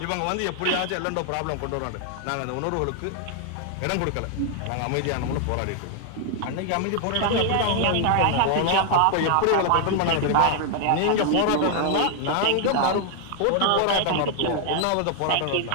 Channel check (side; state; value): both; different; correlation 0.00